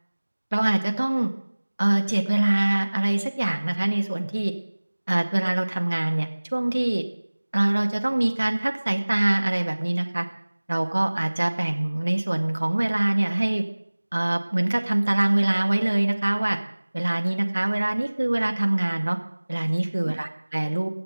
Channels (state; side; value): inverted; both; correlation -1.00